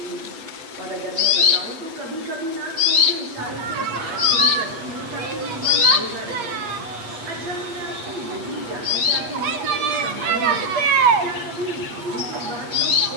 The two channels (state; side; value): late; left; 8.2 ms